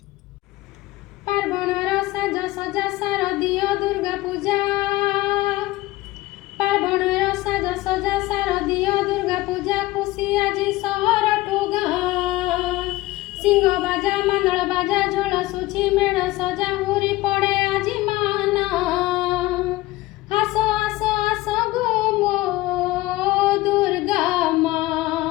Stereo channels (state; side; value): quieter; right; 18.4 dB